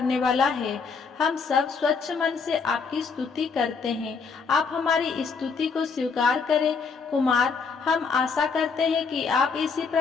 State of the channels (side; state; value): right; quieter; 5.2 dB